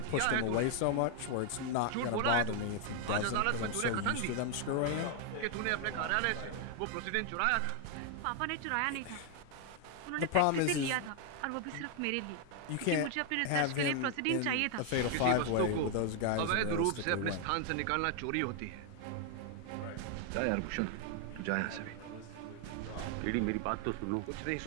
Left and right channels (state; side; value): different; both; correlation 0.00